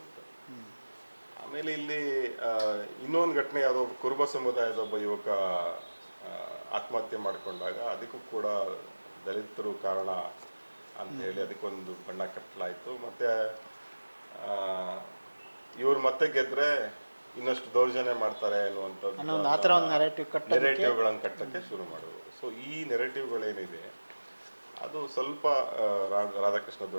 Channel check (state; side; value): inverted; both; correlation -1.00